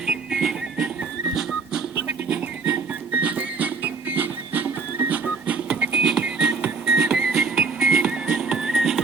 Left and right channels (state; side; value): quieter; left; 4.6 dB